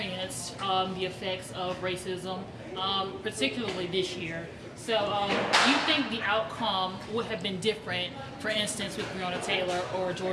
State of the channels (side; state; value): both; identical; correlation 1.00